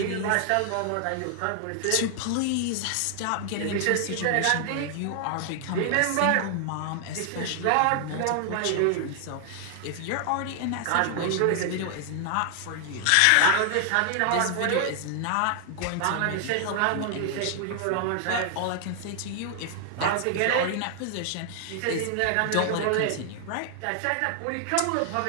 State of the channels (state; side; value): different; both; correlation 0.00